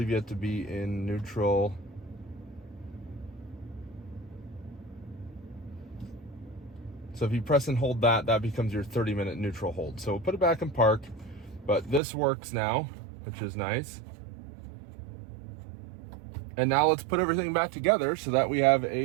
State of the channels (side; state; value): left; drops out; at 12.0 s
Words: you have to be in neutral. So if you press and hold that, that becomes your 30-minute neutral hold. So we'll put it back in park, but this works now, which is nice. And now let's put everything back together so that we have